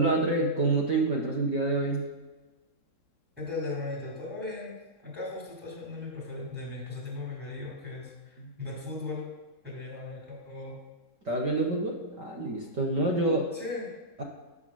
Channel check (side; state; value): left; late; 3.7 ms